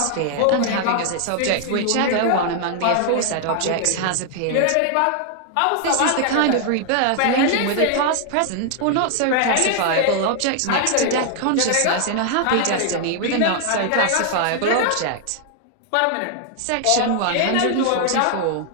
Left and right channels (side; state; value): both; different; correlation 0.00